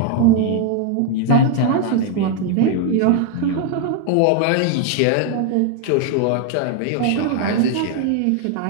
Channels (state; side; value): different; both; correlation 0.01